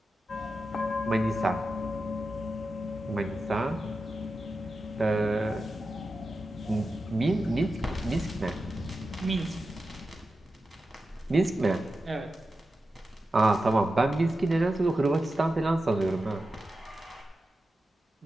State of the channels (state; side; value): normal; both; correlation 0.91